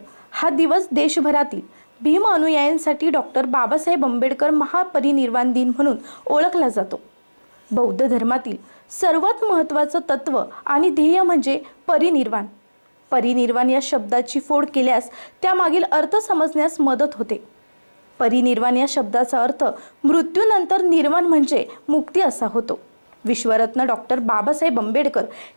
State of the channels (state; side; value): inverted; both; correlation -1.00